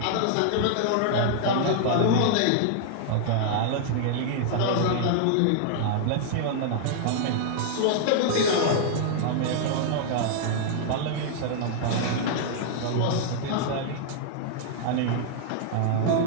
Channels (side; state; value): both; different; correlation -0.01